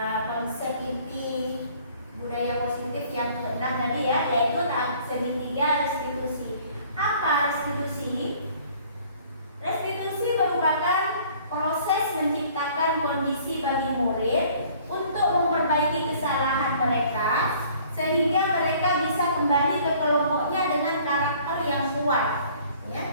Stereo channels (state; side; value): inverted; both; correlation -0.55